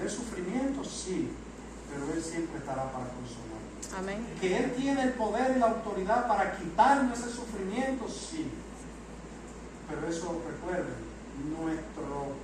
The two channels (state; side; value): identical; both; correlation 1.00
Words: sufrimientos, sí, pero Él siempre estará para consolar. Amén. Que Él tiene el poder y la autoridad para quitarnos ese sufrimiento, sí. Pero eso, recuerden, nuestros